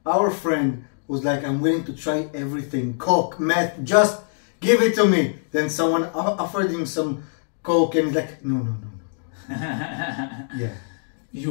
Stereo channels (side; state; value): right; silent; digital silence